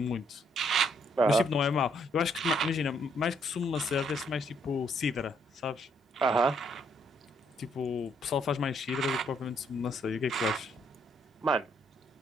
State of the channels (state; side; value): normal; both; correlation 0.70